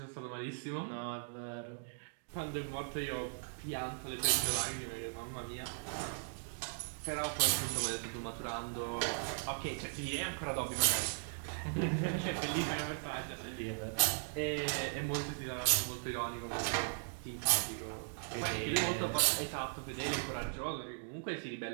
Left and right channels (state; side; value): silent; left; digital silence